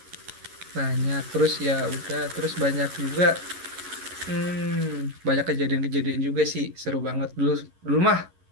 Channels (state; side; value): late; left; 11 ms